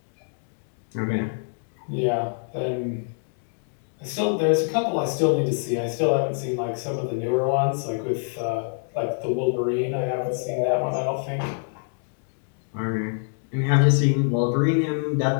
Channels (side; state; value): right; silent; 61 dB below the other